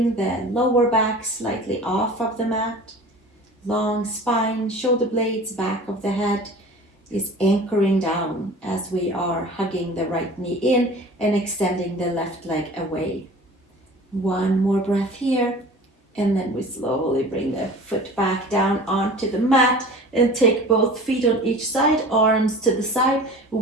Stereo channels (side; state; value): both; normal; correlation 0.41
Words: the lower back slightly off of the mat. Long spine, shoulder blades, back of the head is anchoring down as we are hugging the right knee in and extending the left leg away. One more breath here, and then we slowly bring the foot back down onto the mat and take both feet on each side, arms to the side,